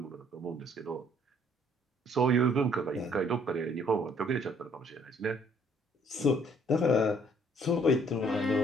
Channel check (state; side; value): normal; both; correlation 0.62